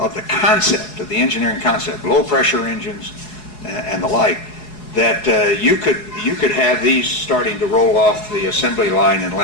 the concept, of the engineering concept, low pressure engines and the like, that you could have these starting to roll off the assembly line in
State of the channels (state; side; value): late; right; 4.7 ms